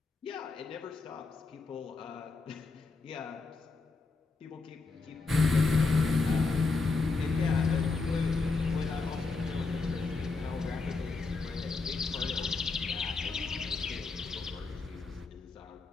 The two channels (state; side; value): quieter; right; 3.9 dB